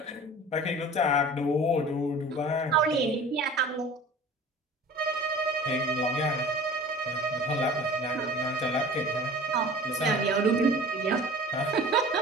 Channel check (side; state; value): both; normal; correlation 0.42